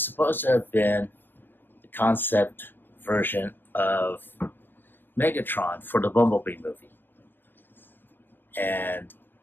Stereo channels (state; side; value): late; right; 0.095 ms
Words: supposed to have been the concept version of Megatron for the Bumblebee movie. And